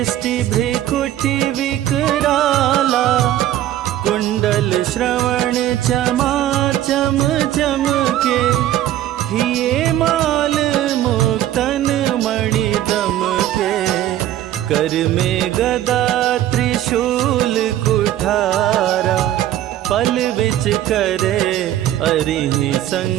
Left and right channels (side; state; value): left; quieter; 12.9 dB